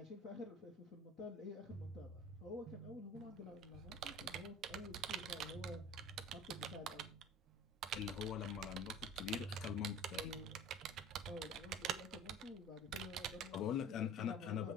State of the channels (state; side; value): normal; both; correlation 0.43